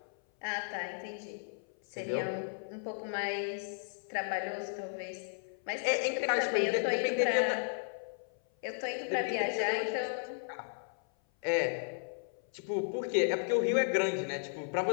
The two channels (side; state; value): right; silent; 55 dB below the other